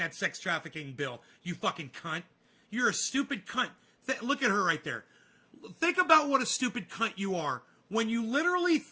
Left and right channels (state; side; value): identical; both; correlation 1.00